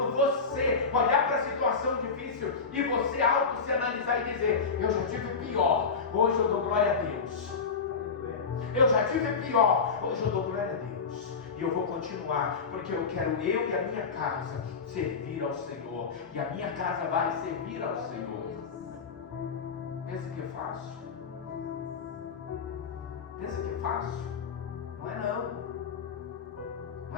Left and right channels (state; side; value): quieter; right; 5.2 dB